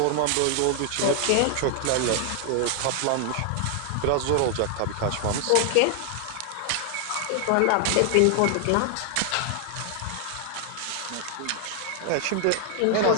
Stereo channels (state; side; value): different; both; correlation 0.00